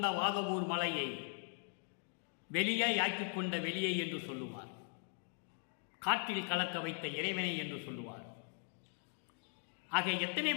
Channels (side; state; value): right; silent; 51 dB below the other